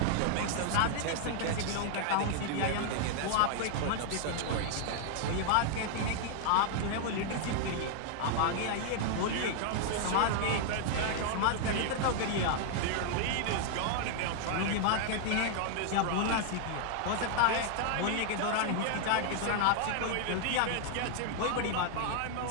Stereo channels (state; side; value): different; both; correlation 0.00